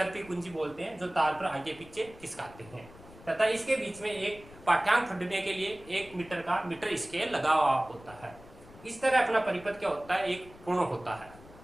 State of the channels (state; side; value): noise; left; rumble, 20 dB below the sound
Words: कुंजी बोलते हैं जो तार पर आगे पीछे खिसकाते हैं तथा इसके बीच में एक पाठ्यांक फटने के लिए 1 मीटर का मीटर स्केल लगा हुआ होता है। इस तरह अपना परिपथ क्या होता है, एक पूर्ण होता है।